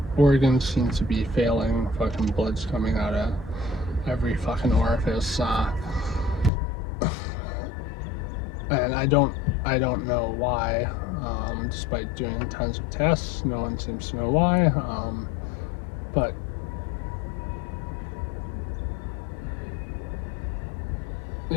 organs seem to be failing. Fucking blood's coming out of every fucking orifice. And I don't know why. Despite doing tons of tests, no one seems to know why. But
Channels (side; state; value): right; drops out; at 6.5 s